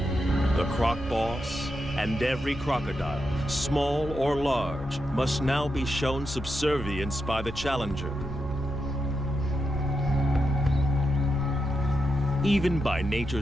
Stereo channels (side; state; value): both; normal; correlation 0.86